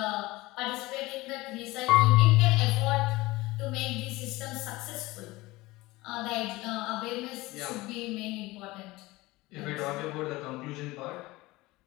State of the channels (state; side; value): quieter; right; 20.2 dB